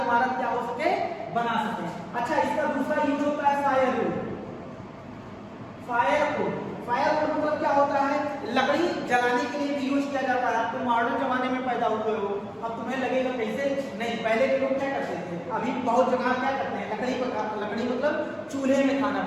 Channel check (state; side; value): identical; both; correlation 1.00